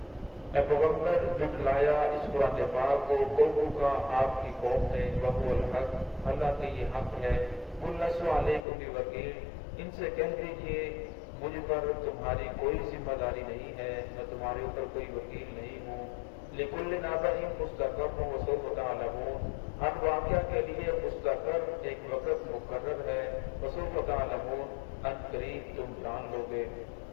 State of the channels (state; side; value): drops out; right; at 8.7 s